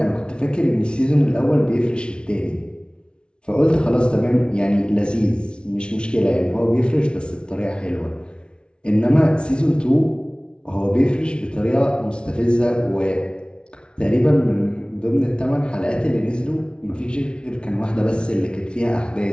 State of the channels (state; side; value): late; right; 0.056 ms